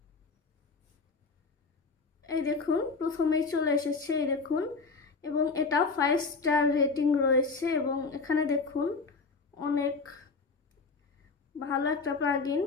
এই দেখুন প্রথমেই চলে এসেছে, এই দেখুন, এবং এটা 5 স্টার রেটিং রয়েছে এবং এখানে দেখুন অনেক ভালো একটা প্লাগইন,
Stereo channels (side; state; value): right; quieter; 4.3 dB